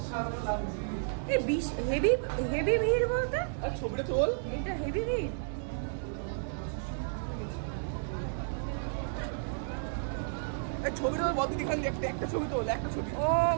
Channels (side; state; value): left; silent; 56 dB below the other